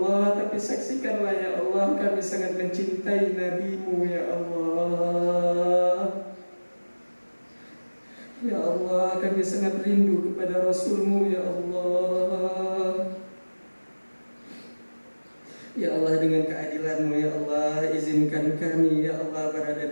Tapi saksikanlah ya Allah, kami sangat mencintai Nabi-Mu ya Allah. Ya Allah, kami sangat rindu kepada Rasul-Mu ya Allah. Ya Allah, dengan keadilan-Mu ya Allah, izinkan kami ya Allah berada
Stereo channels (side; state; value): both; inverted; correlation -1.00